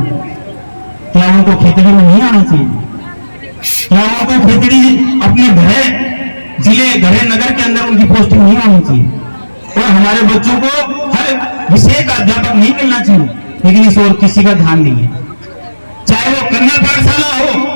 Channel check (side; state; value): both; inverted; correlation -1.00